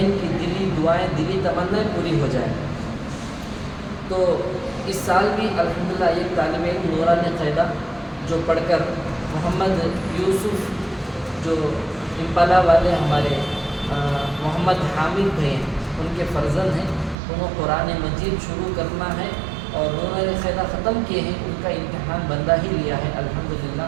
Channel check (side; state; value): left; drops out; at 17.2 s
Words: کی دلی دعائیں، دلی تمنائیں پوری ہو جائیں۔ تو اس سال بھی الحمدللہ ایک طالب علم نورانی قاعدہ جو پڑھ کر محمد یوسف جو امپالا والے ہمارے محمد حامد بھائی ہیں، ان کے فرزند ہیں، انہوں قرآن مجید شروع کرنا ہے اور نورانی قاعدہ ختم کیے ہیں، ان کا امتحان بندہ ہی لیا ہے الحمدللہ،